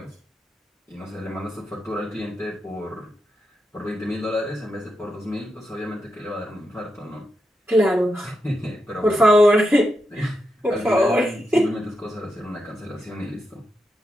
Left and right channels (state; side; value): normal; both; correlation 0.86